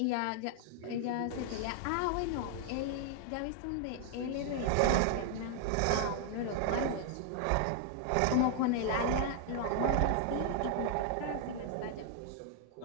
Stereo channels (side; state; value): both; different; correlation 0.00